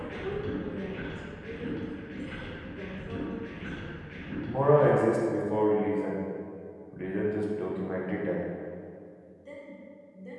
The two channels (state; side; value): identical; both; correlation 1.00